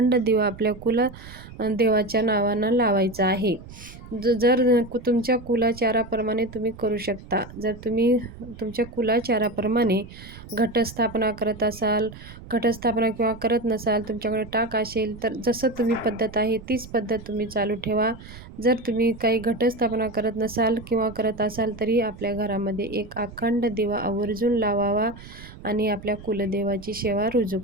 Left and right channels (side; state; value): right; noise; rumble, 16 dB below the sound